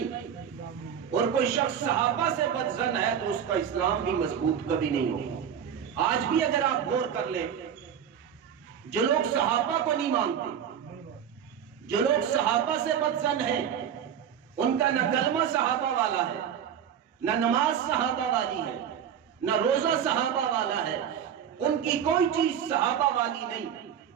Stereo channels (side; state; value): left; quieter; 8.7 dB